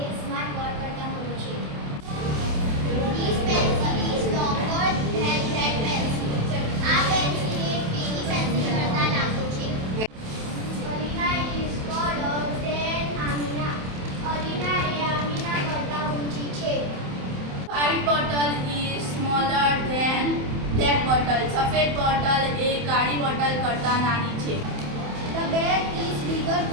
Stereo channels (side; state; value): left; late; 27 ms